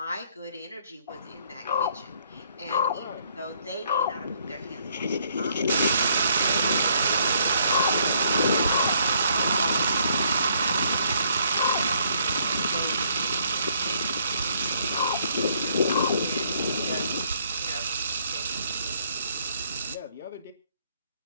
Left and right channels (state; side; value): inverted; both; correlation -0.67